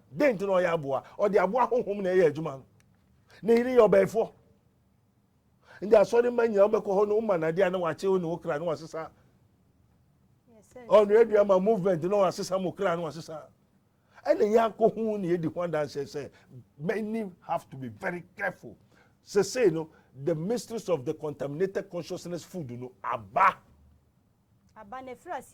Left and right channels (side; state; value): both; identical; correlation 1.00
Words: den ti no ya aboa o de aboa honhom na ye adwuma na iri yo be fo ndi asori manya obekọ ho no uma na dia na wache ho no okra na wasesa on radio ma movement no wasesa mo kra na wasesa ene ya ko hu na edi ho dan say many have to be very careful say no the mysteries of the contaminated consciousness food no aba ne fra